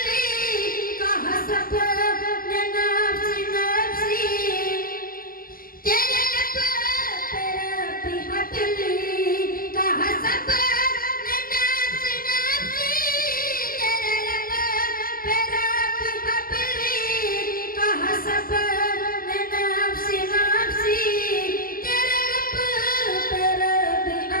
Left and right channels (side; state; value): right; late; 0.42 ms